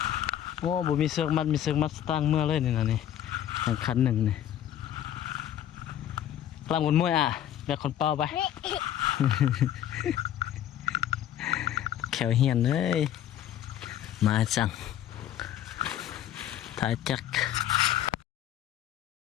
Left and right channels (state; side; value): quieter; right; 11.2 dB